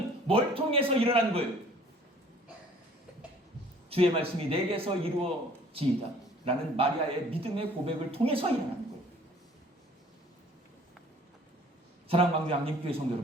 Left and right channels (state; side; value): normal; both; correlation 0.54